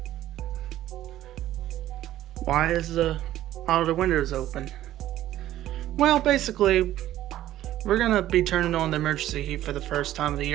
why is all the windows open? Well, basically, we're gonna be turning on the emergency heat for the first time of the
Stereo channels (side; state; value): left; quieter; 13.5 dB